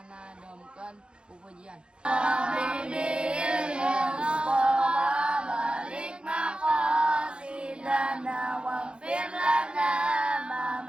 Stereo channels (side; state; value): left; late; 0.054 ms